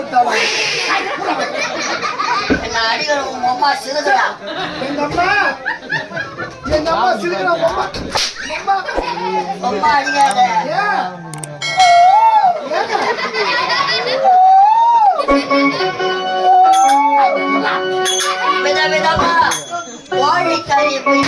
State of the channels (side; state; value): both; identical; correlation 1.00